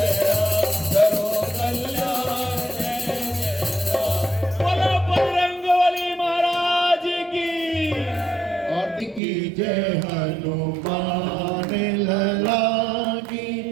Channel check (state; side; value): drops out; left; at 9.2 s